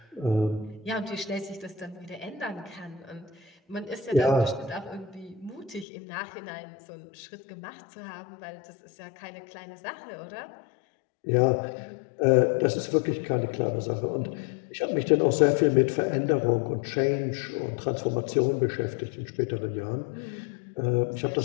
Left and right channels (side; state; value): right; drops out; at 5.9 s